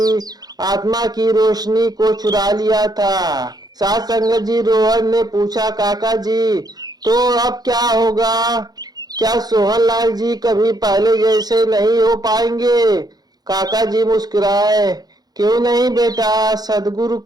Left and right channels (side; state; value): left; late; 0.19 ms